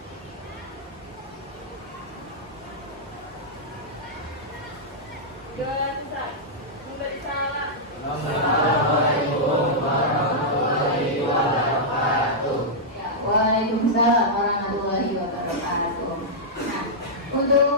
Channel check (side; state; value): both; normal; correlation -0.09